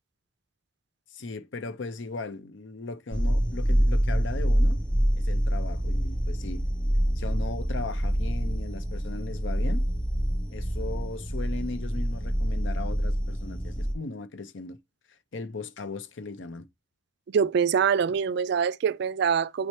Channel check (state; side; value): normal; both; correlation 0.66